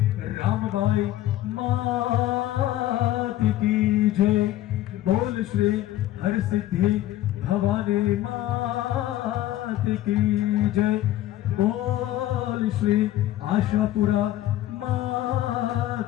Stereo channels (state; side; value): quieter; right; 14.1 dB